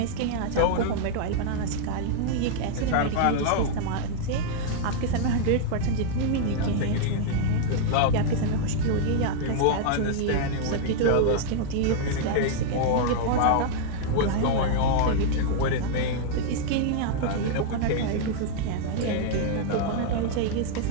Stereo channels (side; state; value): both; different; correlation -0.01